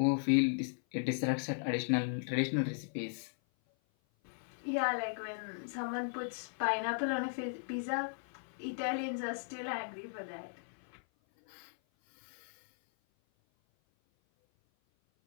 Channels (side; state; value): right; silent; 53 dB below the other